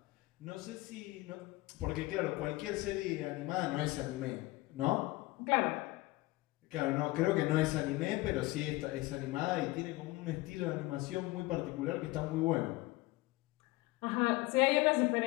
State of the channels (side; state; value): right; quieter; 20.4 dB